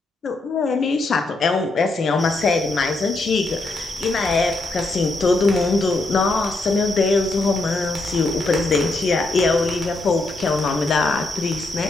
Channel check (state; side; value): quieter; right; 3.1 dB